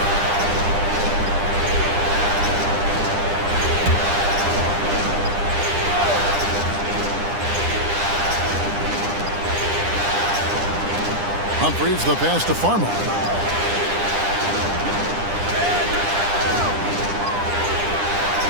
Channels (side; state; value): left; late; 9.9 ms